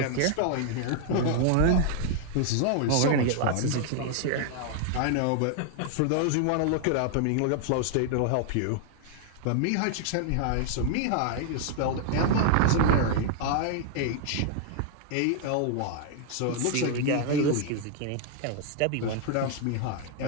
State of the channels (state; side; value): different; both; correlation 0.00